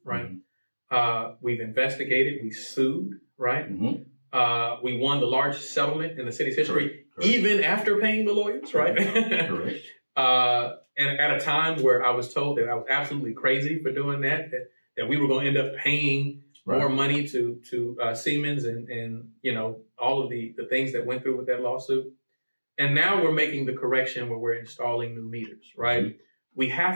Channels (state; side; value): inverted; both; correlation -1.00